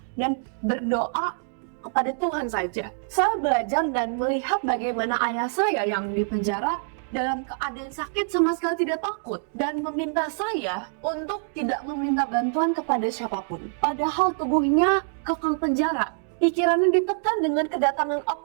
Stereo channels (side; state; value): left; silent; digital silence